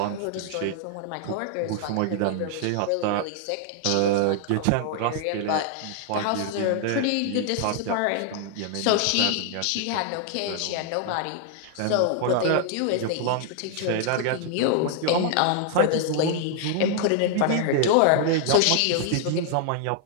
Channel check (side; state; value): both; different; correlation 0.00